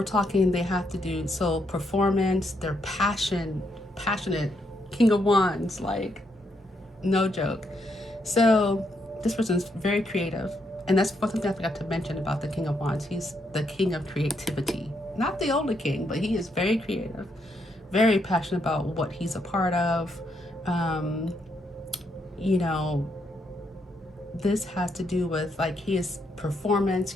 talking they have to do so performance, their passionate, King of Wands, like no joke. So this person's very creative. And that's something I forgot to mention about the King of Wands. He's the king of creativity. Not the only king, but he is very creative, very passionate about what he's a part of. Um, you know, this has to do with like his performance.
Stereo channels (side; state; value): both; normal; correlation 0.77